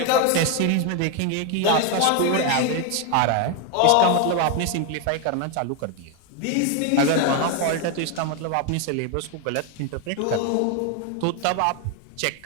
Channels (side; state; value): both; different; correlation 0.01